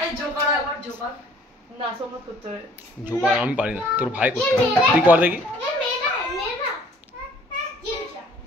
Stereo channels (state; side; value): normal; both; correlation 0.57